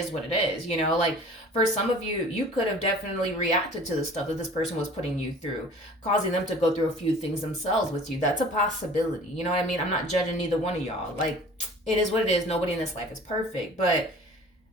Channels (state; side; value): normal; both; correlation 0.46